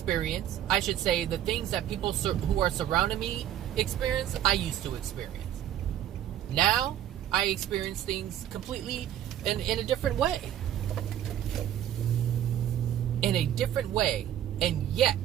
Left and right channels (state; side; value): quieter; left; 11.3 dB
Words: I should say, the things that people who are surrounding me experience, I used to experience. Now, I experience things completely in a different way. In a different way. And yet,